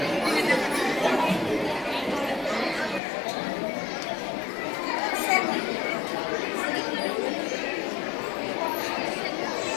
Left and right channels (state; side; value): drops out; right; at 3.0 s